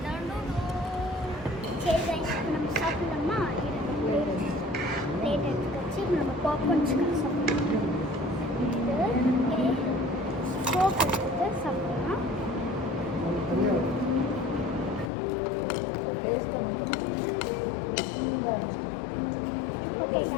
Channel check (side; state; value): right; drops out; at 15.1 s